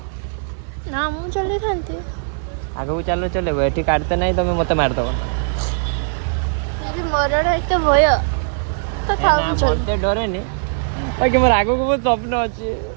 ना मु चले थांती आगु चलो चले एठी काटते नहीं तमे मते मार दबो यदि मरण है तो भय तो थाउ चल मते डरे नी बाकी मोर आगु को बहुत स्वप्न अछि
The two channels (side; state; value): left; silent; 57 dB below the other